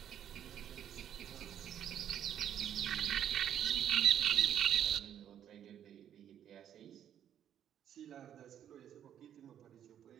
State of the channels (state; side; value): quieter; left; 9.9 dB